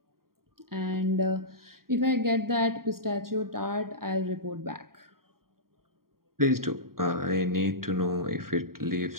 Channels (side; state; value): left; late; 0.93 ms